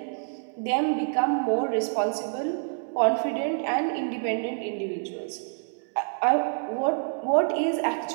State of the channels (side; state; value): left; silent; 60 dB below the other